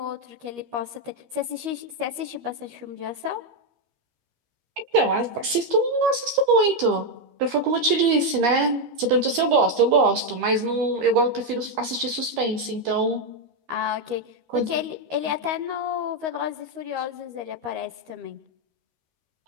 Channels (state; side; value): late; left; 13 ms